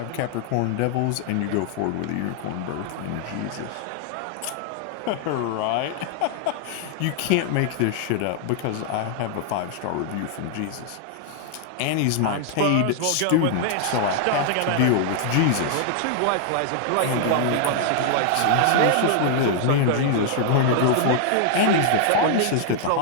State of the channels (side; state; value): both; different; correlation 0.00